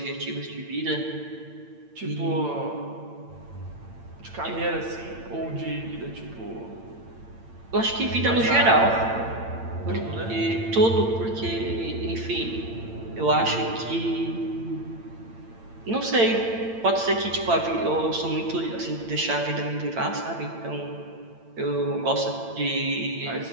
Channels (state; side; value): late; left; 8.8 ms